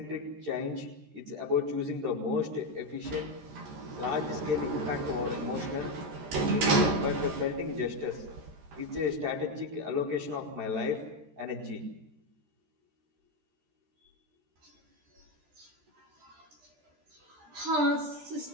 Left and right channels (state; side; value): late; left; 13 ms